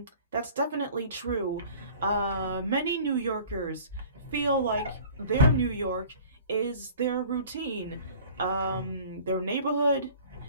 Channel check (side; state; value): both; inverted; correlation -0.46